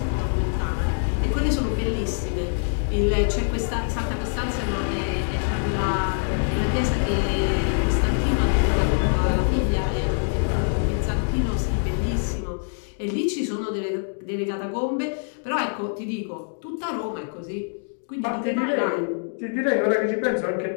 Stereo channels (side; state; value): right; silent; digital silence